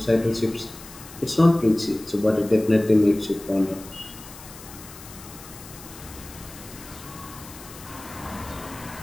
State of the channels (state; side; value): noise; left; hiss, 17 dB below the sound